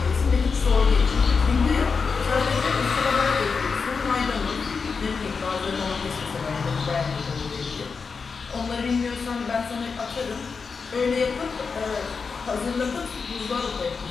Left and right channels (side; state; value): right; quieter; 5.1 dB